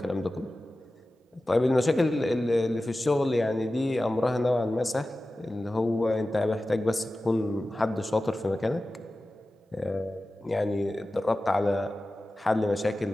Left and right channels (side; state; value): both; normal; correlation 0.95